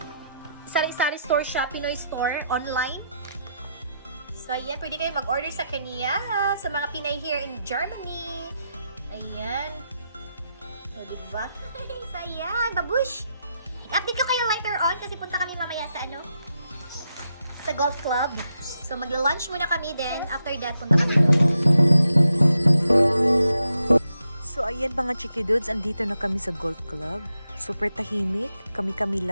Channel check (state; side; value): inverted; both; correlation -0.83